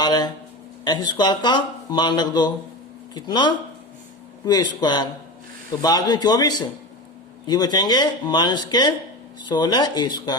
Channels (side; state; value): both; normal; correlation 0.25